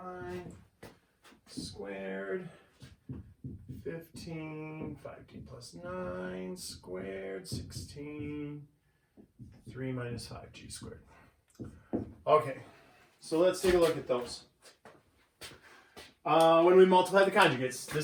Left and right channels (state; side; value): identical; both; correlation 1.00